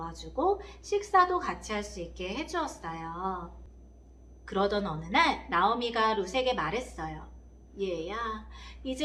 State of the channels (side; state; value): both; identical; correlation 1.00